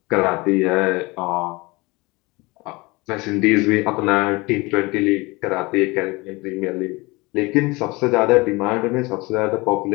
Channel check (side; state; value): right; quieter; 24.0 dB